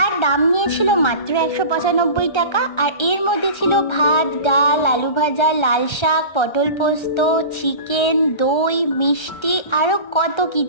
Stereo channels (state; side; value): late; right; 1.3 ms